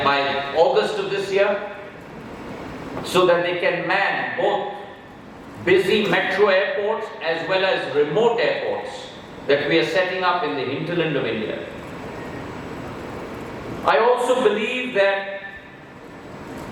August of this year, so that they can man both busy metro airports as well as remote airports that we are setting up in the hinterland of India. I also believe that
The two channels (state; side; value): identical; both; correlation 1.00